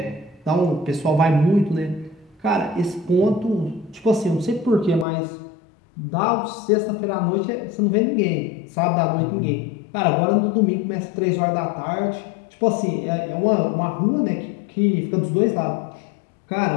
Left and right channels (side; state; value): right; drops out; at 5.1 s